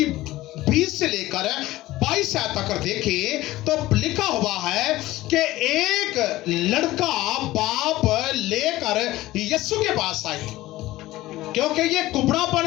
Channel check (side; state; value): right; quieter; 17.1 dB